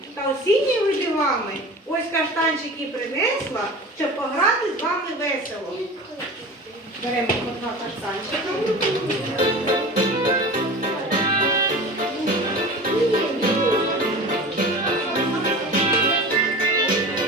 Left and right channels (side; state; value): both; normal; correlation 0.35